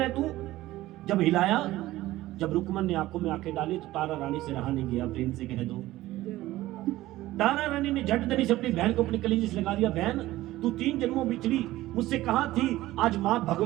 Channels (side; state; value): left; quieter; 16.4 dB